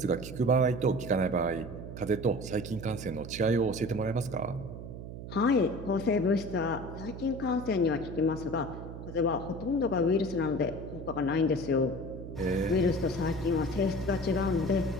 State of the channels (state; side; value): noise; right; hum, 10 dB below the sound